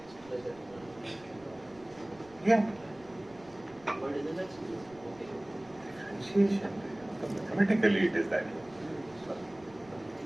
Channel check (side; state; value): right; noise; rumble, 24 dB below the sound